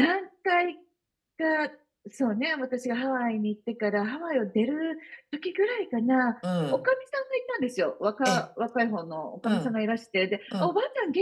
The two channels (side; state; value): both; identical; correlation 1.00